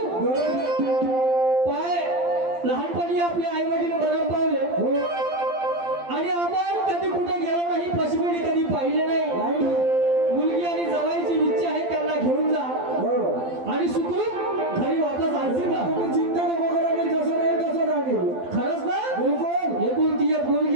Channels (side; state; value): left; late; 12 ms